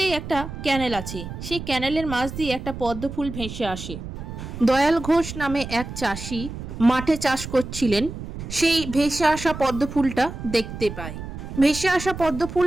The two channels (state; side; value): noise; right; rumble, 9 dB below the sound